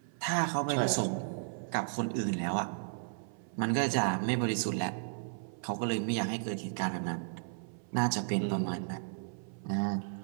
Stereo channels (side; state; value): left; silent; 55 dB below the other